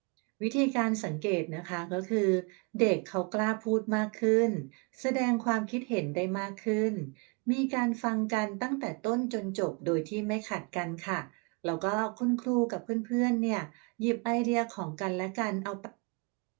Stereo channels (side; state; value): left; quieter; 32.2 dB